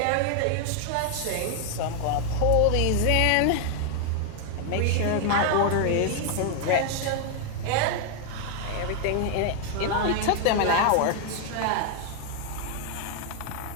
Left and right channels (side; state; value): both; different; correlation 0.00